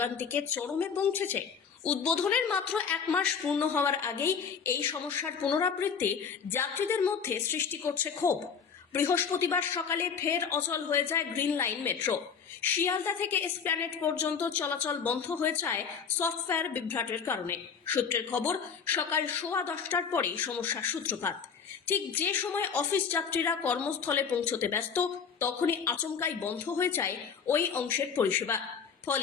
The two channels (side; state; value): right; quieter; 6.5 dB